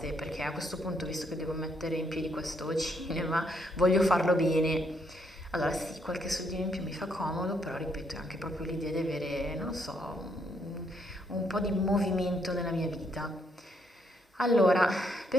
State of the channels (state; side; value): normal; both; correlation 0.73